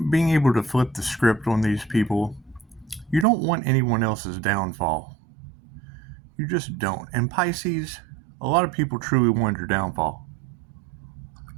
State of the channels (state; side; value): drops out; left; at 3.2 s